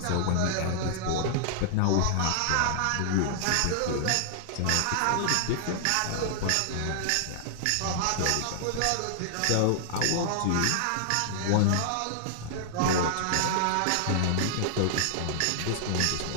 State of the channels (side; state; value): both; different; correlation -0.01